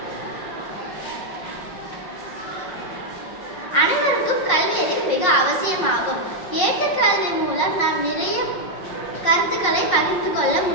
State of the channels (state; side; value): late; right; 5.5 ms